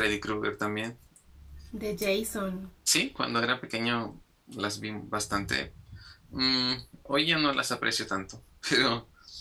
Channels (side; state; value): both; identical; correlation 1.00